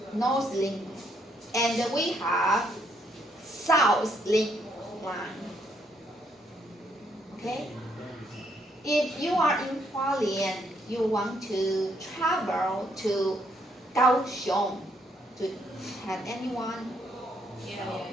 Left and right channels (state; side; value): normal; both; correlation 0.72